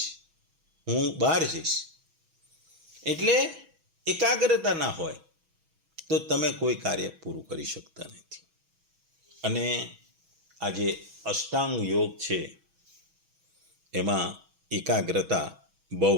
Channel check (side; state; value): left; late; 6.2 ms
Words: હું બહાર જઈશ. એટલે એકાગ્રતા ના હોય તો તમે કોઈ કાર્ય પૂરું કરી શકતા નથી. અને આ જે અષ્ટાંગ યોગ છે એમાં એકાગ્રતા બહુ